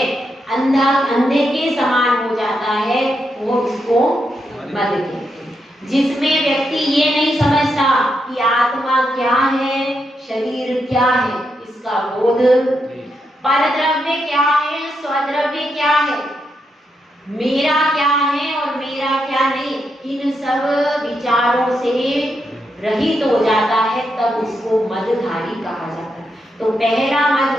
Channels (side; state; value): both; normal; correlation 0.82